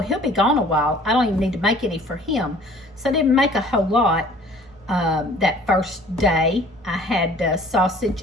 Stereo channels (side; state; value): both; normal; correlation 0.51